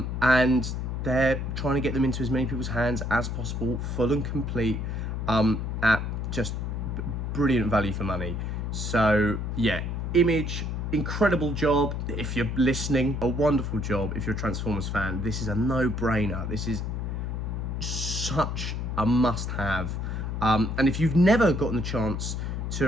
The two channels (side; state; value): left; noise; hum, 3 dB below the sound